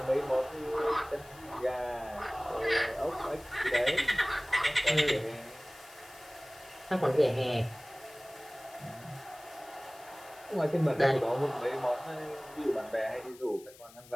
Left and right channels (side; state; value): left; noise; hiss, 22 dB below the sound